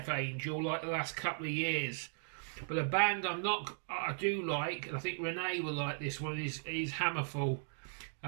Angel, like the last couple of years. But a band I do like, and I think Renee will like this one, is Hammerfall.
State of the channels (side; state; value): left; silent; digital silence